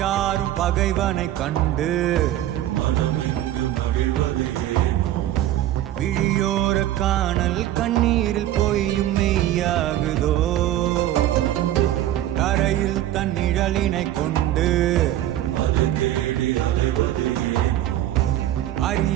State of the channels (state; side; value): quieter; left; 13.1 dB